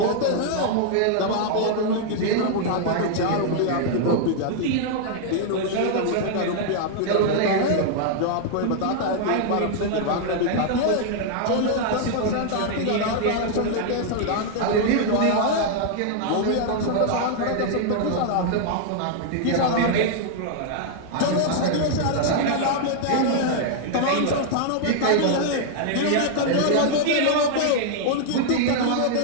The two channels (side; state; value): both; different; correlation 0.00